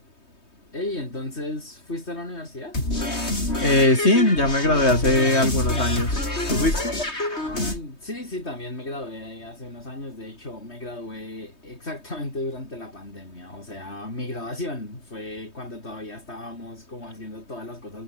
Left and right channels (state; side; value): late; right; 3.2 ms